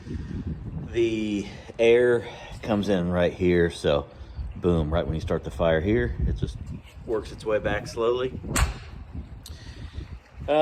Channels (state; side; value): identical; both; correlation 1.00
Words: the air comes in right here. So boom, right when you start the fire here, it just works its way back slowly.